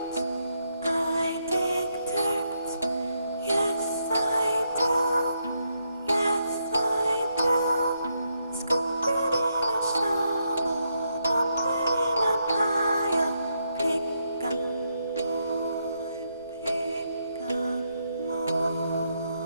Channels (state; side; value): inverted; both; correlation -0.79